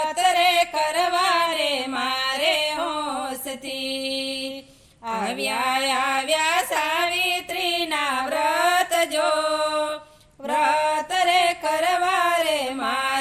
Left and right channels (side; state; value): both; identical; correlation 1.00